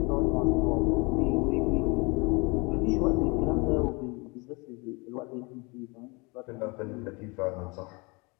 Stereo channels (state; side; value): quieter; right; 28.3 dB